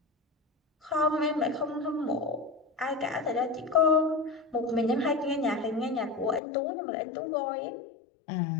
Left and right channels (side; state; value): right; drops out; at 6.4 s